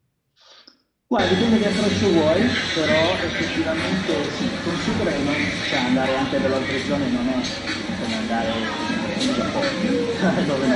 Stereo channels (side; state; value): both; identical; correlation 1.00